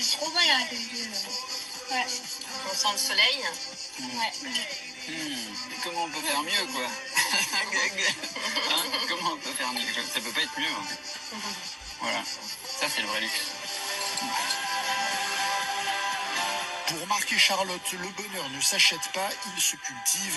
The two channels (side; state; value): both; identical; correlation 1.00